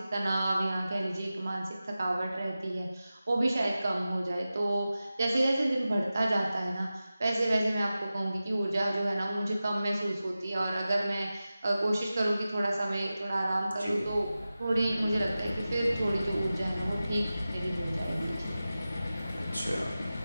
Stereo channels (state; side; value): inverted; both; correlation -0.95